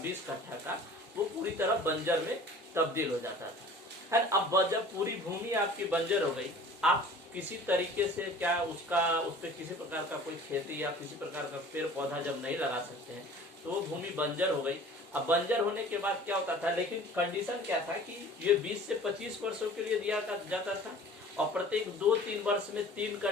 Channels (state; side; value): normal; both; correlation 0.46